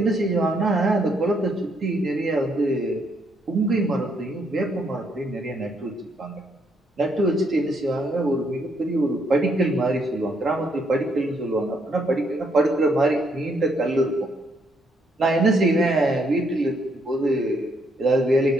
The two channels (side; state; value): both; normal; correlation 0.73